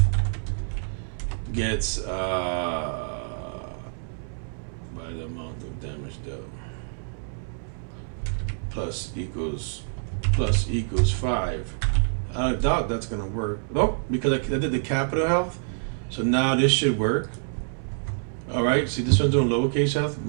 gets by the amount of damage dealt plus equals 5. I doubt that's gonna work. Nope, because I did the capital health, so now this should work. All right, see this one's doing lowercase health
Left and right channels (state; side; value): silent; left; 60 dB below the other